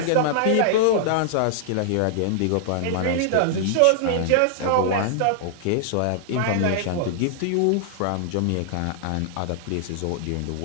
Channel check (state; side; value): different; both; correlation -0.01